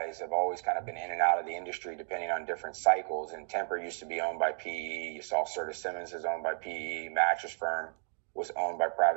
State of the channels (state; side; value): silent; left; digital silence